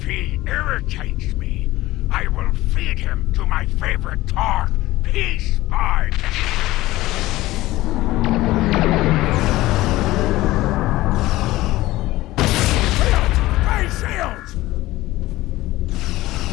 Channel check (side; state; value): right; quieter; 17.4 dB